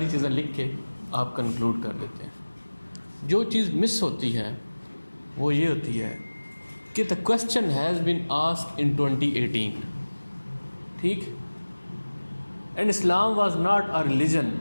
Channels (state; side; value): inverted; both; correlation -1.00